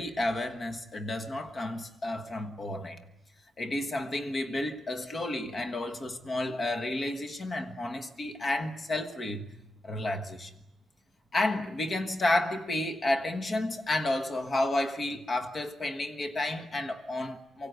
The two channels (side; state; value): both; normal; correlation 0.89